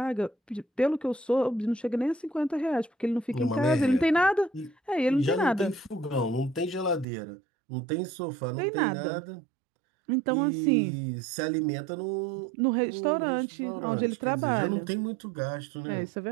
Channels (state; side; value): drops out; left; at 7.1 s